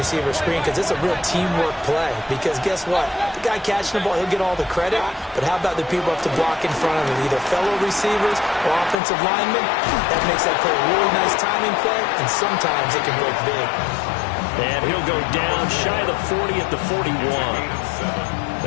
screen because it's a real teamwork play. Because guess what? The guy catching the ball, he'll get all the credit. But how about the people up to block in front of him? Either fellow receivers or offensive linemen. That makes that play a really nice timing play. And sometimes it can break big. And he'll go down shy of the 40 at the 41.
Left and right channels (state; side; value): drops out; right; at 9.0 s